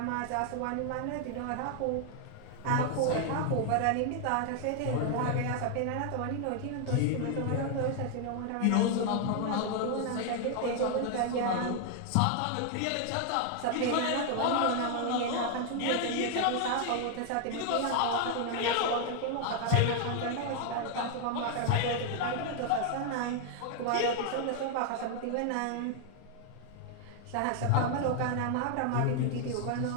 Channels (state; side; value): different; both; correlation 0.00